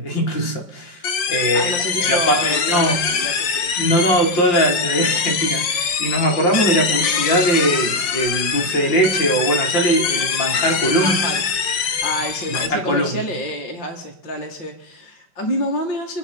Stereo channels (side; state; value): right; late; 5.5 ms